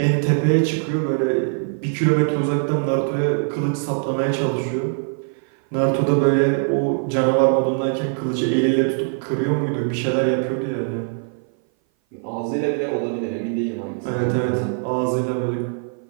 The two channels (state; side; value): silent; left; 58 dB below the other